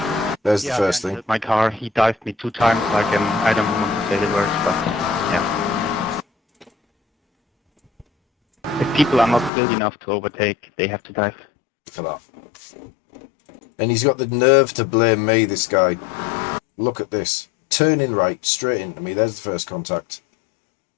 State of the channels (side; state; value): right; drops out; at 9.5 s